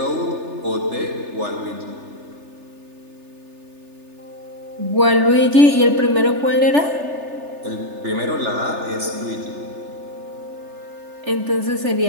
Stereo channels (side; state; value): left; late; 3.3 ms